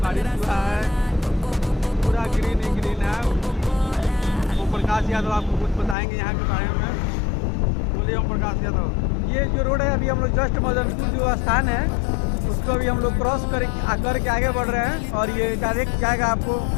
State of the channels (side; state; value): right; drops out; at 6.0 s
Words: बारिश हुआ है, पूरा ग्रीन ही ग्रीन है। ओम प्रकाश यादव आपको कुछ बताएंगे यहाँ के बारे में। बोलिए ओम प्रकाश यादव। ये जो रोड है, अभी हम लोग जस्ट मदनपुर जो स्थान है उसको अभी हम लोग क्रॉस करके आगे बढ़ रहे हैं और ये डायरेक्ट जाएगा आपको